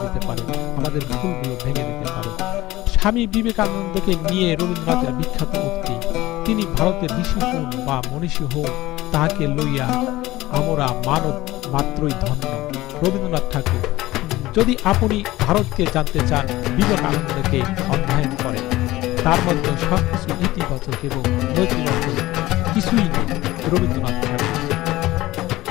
দিতে পারে, আমাদের ভুলগুলো ভেঙে দিতে পারে। স্বামী বিবেকানন্দকে নিয়ে রবীন্দ্রনাথের বিখ্যাত উক্তি, তিনি ভারতের ঋষি হন বা মনীষী হন, তাহাকে লইয়া আমরা মানব মাত্রই ধন্য। রবীন্দ্রনাথ ঠাকুর। যদি আপনি ভারতকে জানতে চান, বিবেকানন্দকে অধ্যয়ন করেন। তার মধ্যে সবকিছু ইতিবাচক এবং নৈতিবাচক কিছুই নেই। রবীন্দ্রনাথ ঠাকুর।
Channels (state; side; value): quieter; right; 17.7 dB